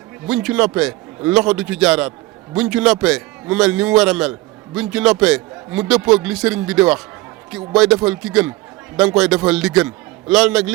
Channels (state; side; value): quieter; left; 19.5 dB